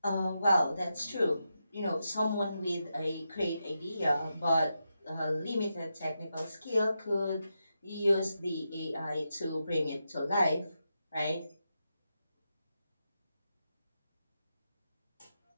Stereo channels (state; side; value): inverted; both; correlation -0.87